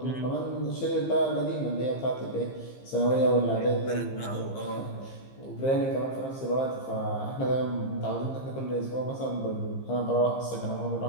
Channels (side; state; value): right; late; 15 ms